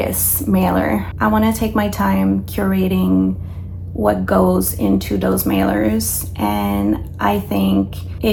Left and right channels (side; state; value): both; identical; correlation 1.00